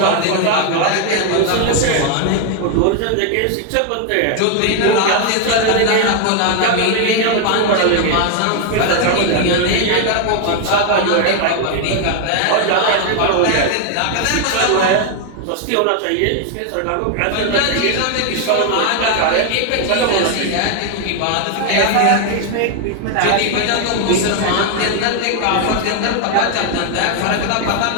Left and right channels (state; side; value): different; both; correlation 0.00